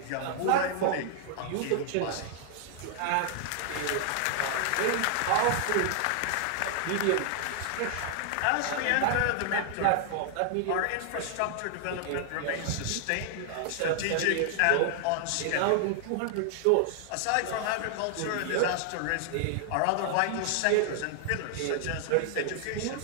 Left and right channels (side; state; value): both; different; correlation 0.00